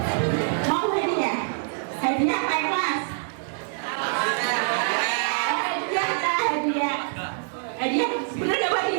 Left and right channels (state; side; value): silent; left; 62 dB below the other